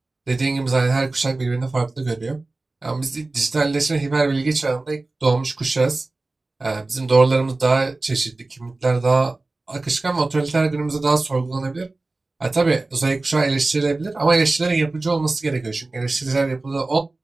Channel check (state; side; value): quieter; left; 3.2 dB